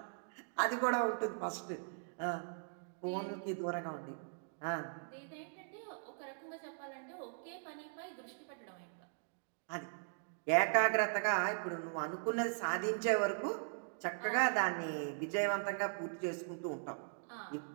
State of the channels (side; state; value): left; silent; digital silence